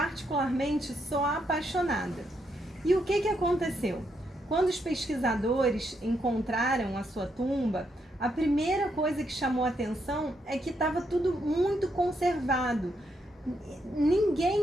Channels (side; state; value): both; normal; correlation 0.78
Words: sou apaixonada. E o que aconteceu? Quando os pesquisadores encontraram a sua tumba, a primeira coisa que chamou a atenção é que estava tudo muito conservado.